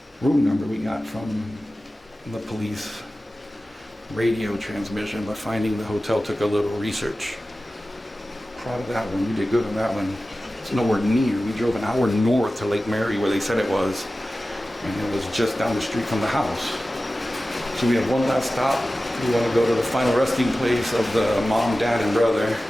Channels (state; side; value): normal; both; correlation 0.95